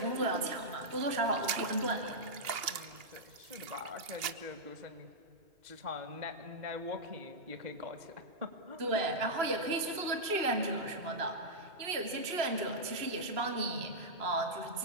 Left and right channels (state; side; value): late; left; 2.8 ms